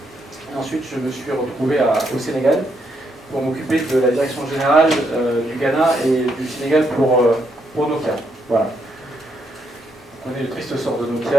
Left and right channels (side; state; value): both; normal; correlation 0.77